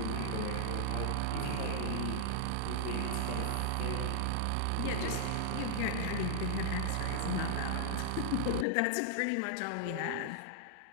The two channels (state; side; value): different; both; correlation -0.01